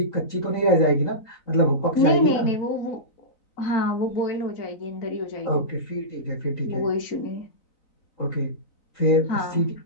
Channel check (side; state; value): right; late; 3.9 ms